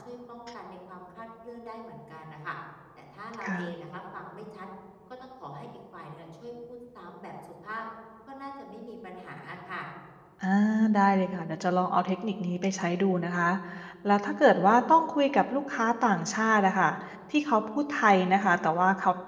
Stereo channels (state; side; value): identical; both; correlation 1.00